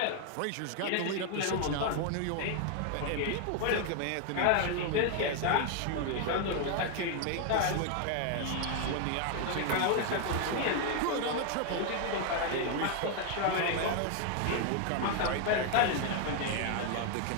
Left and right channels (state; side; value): different; both; correlation 0.00